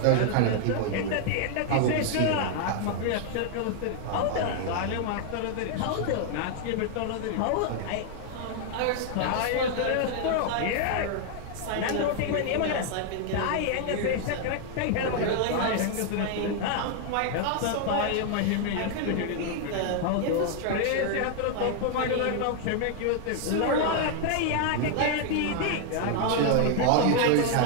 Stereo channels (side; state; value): both; different; correlation 0.00